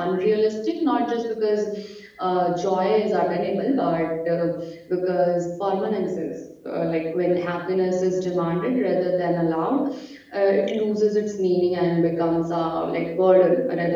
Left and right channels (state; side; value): identical; both; correlation 1.00